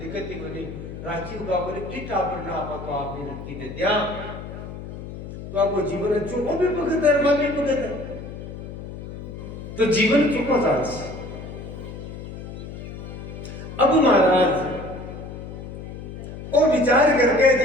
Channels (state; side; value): noise; left; hum, 10 dB below the sound